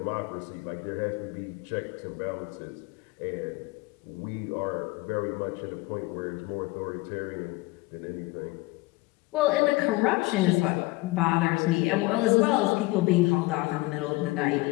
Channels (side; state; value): right; quieter; 22.0 dB